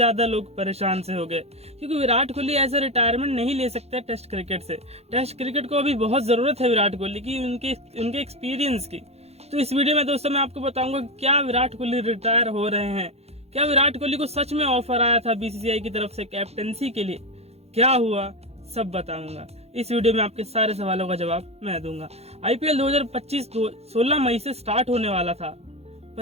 लोग परेशान से हो गए, क्योंकि विराट कोहली ऐसा रिटायरमेंट नहीं ले सकते टेस्ट क्रिकेट से। टेस्ट क्रिकेट को अभी बहुत जरूरत है विराट कोहली की, उनके एक्सपीरियंस की। तो इस वीडियो में दोस्तों मैं आपको बताऊंगा क्या विराट कोहली रिटायर हो रहे हैं, क्या विराट कोहली को सच में ऑफर आया था बीसीसीआई की तरफ से कैप्टनसी के लिए, क्या हुआ सब बताऊंगा। इस वीडियो में आपके सारे सवालों का जवाब मैं दूंगा। आईपीएल 2025 16 मई से स्टार्ट होने वाला था,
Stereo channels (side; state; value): left; late; 0.30 ms